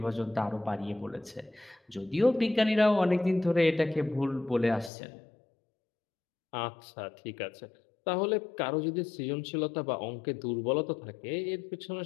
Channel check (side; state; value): right; drops out; at 4.9 s